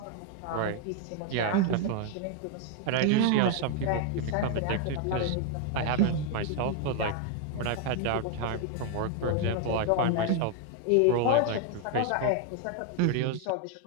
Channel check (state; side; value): different; both; correlation 0.00